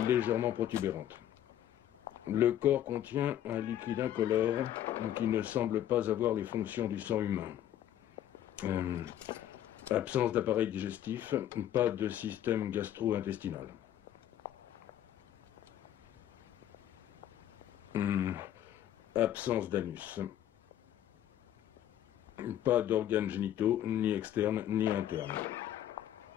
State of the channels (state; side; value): quieter; right; 11.3 dB